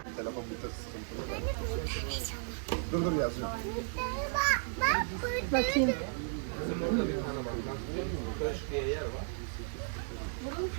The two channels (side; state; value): left; silent; 55 dB below the other